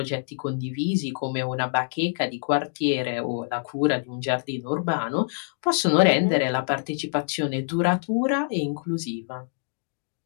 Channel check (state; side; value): silent; right; digital silence